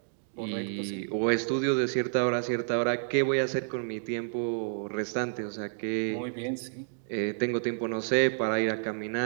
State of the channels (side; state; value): left; silent; digital silence